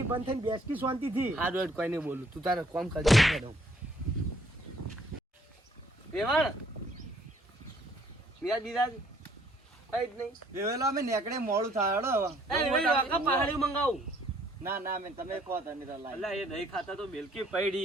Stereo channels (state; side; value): normal; both; correlation 0.63